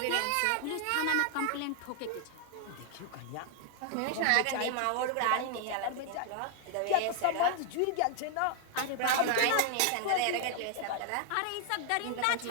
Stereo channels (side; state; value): both; different; correlation 0.00